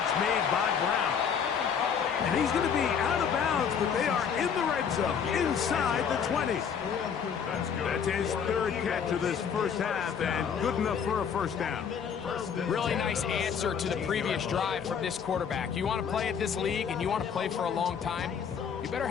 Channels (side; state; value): right; quieter; 7.1 dB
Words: made by Brown. And he's going to be out of bounds, but they are in the red zone, inside the 20. That's his third catch of this first half, and good enough for a first down. Really nice answer to the previous drive from this quarterback. You want to play at this league and you want to play for a long time, you better